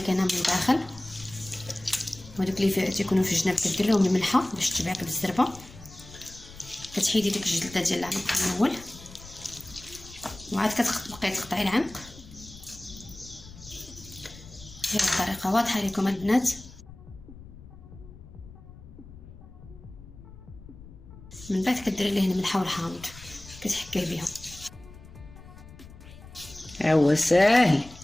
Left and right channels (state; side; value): noise; left; rumble, 18 dB below the sound